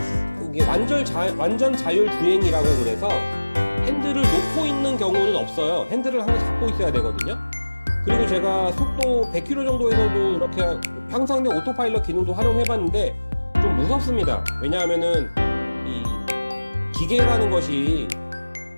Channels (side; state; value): both; inverted; correlation -1.00